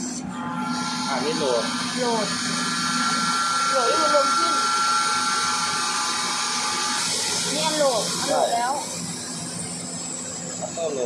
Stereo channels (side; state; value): both; identical; correlation 1.00